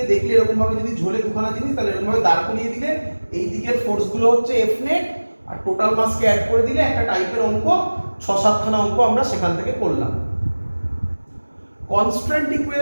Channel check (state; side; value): inverted; both; correlation -1.00